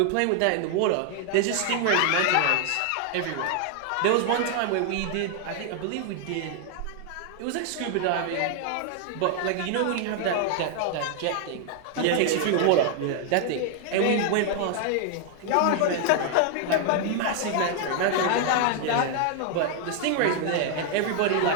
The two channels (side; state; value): both; different; correlation 0.00